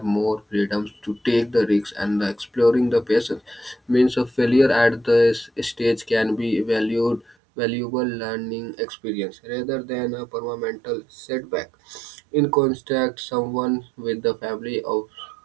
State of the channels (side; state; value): left; drops out; at 7.4 s